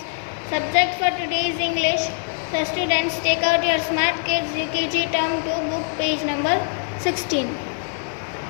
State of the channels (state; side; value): silent; right; 63 dB below the other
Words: Subject for today is English. So students, take out your Smart Kids UKG Term 2 book, page number 16.